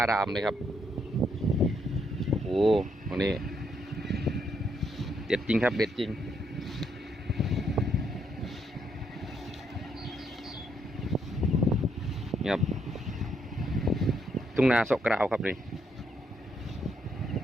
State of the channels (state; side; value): normal; both; correlation 0.75